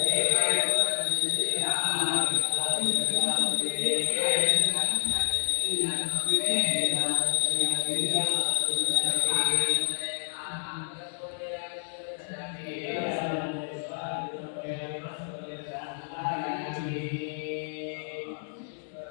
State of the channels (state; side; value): silent; right; digital silence